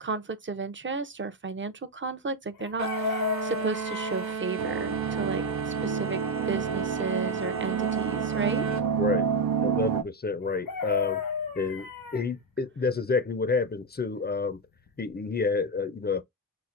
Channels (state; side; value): normal; both; correlation 0.07